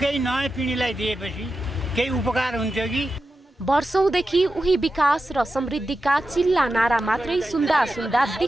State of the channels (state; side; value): normal; both; correlation 0.91